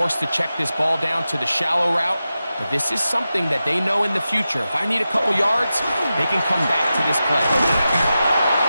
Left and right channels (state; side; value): inverted; both; correlation -0.92